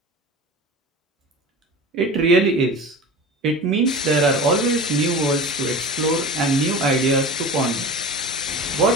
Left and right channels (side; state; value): both; normal; correlation 0.33